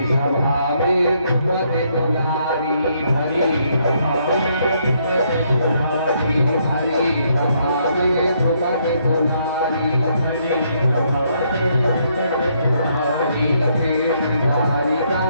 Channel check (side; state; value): both; inverted; correlation -0.72